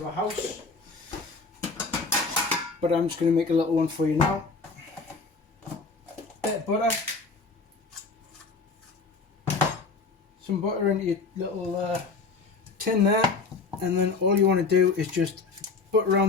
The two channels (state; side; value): quieter; right; 4.2 dB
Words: a house, but I'm just going to make a little one for you now. Bit of butter, some butter into your little tin there, and then all you want to do is just butter